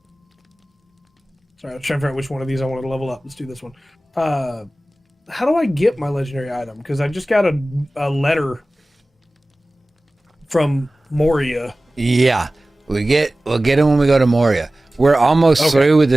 I was trying to figure out which one of these I wanted to level up. Let's do this one. How do I get my legendary item? Because I just got a letter from Moria. Yeah. We'll get it when we go to Moria. We're almost through with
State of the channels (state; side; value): normal; both; correlation 0.97